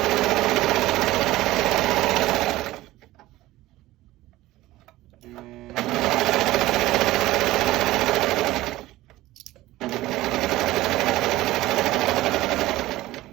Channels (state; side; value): quieter; left; 17.0 dB